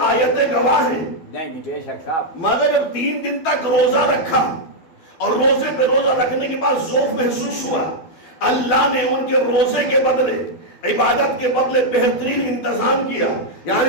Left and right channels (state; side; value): late; right; 12 ms